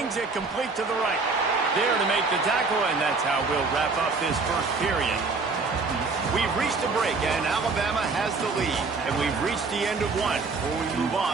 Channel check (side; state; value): left; quieter; 4.1 dB